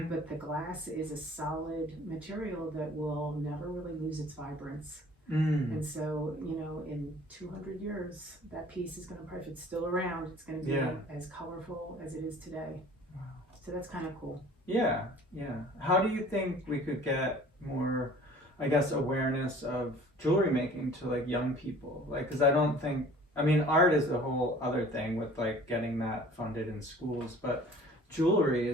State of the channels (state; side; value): normal; both; correlation 0.49